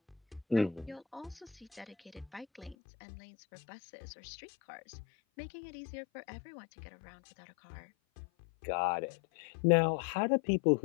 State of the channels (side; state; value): right; drops out; at 2.8 s